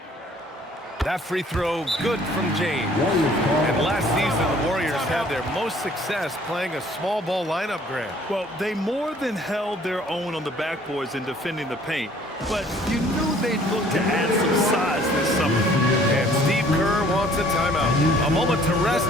That free throw, good from James. And last season, the Warriors had their most success playing a small ball lineup, Grant. Well, they more than held their own on the backboards in defending the paint. But you knew they'd look to add some size this summer. And Steve Kerr wants a timeout. A moment to rest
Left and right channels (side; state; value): both; normal; correlation 0.57